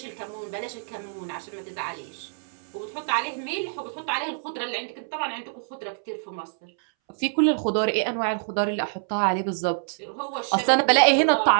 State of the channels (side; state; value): left; silent; 61 dB below the other